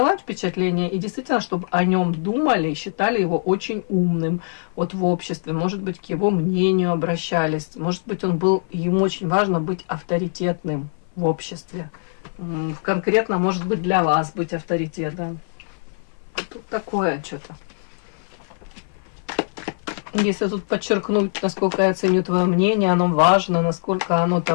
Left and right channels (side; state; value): right; silent; 56 dB below the other